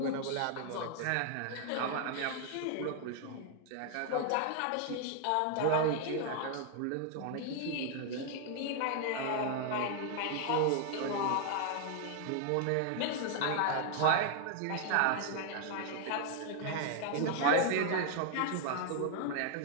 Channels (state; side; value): different; both; correlation 0.00